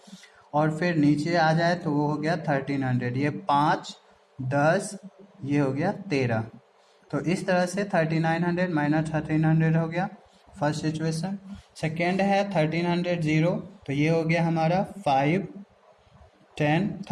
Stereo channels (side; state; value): both; identical; correlation 1.00